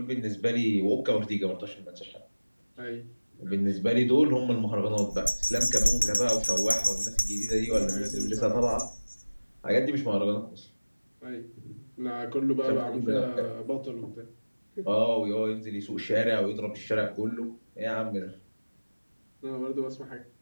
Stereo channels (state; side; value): inverted; both; correlation -1.00